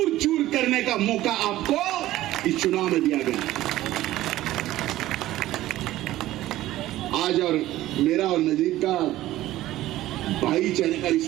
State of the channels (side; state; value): left; quieter; 15.3 dB